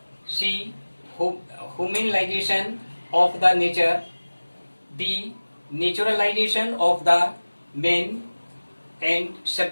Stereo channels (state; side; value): inverted; both; correlation -1.00